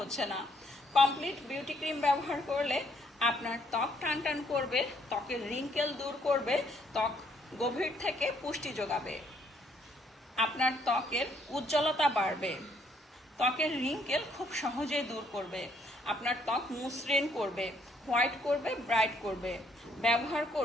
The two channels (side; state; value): both; normal; correlation 0.68